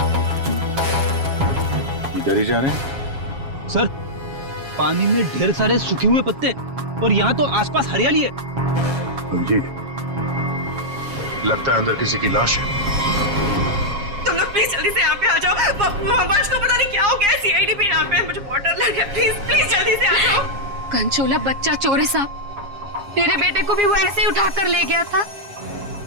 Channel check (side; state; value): left; late; 7.3 ms